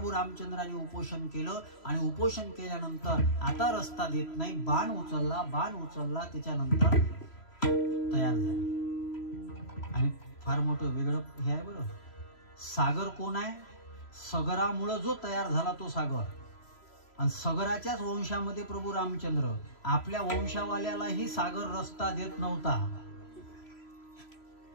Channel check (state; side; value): late; right; 3.0 ms